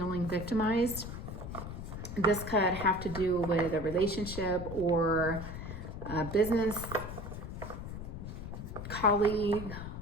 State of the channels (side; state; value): left; noise; rumble, 8 dB below the sound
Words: victimized. This could have to do with a relationship or a business colleague